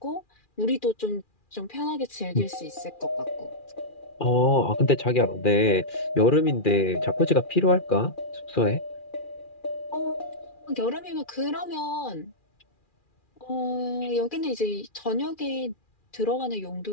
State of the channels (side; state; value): right; late; 2.4 ms